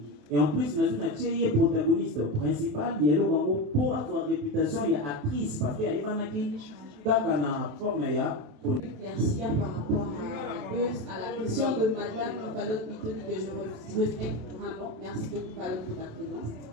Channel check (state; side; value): late; left; 28 ms